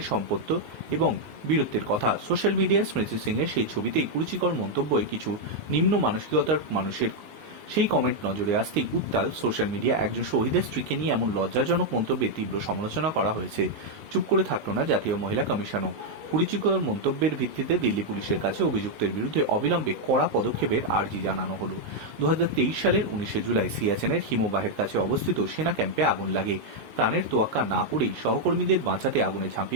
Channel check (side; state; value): left; late; 19 ms